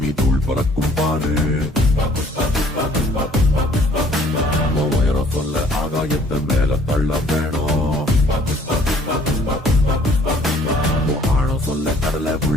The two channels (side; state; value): both; normal; correlation 0.58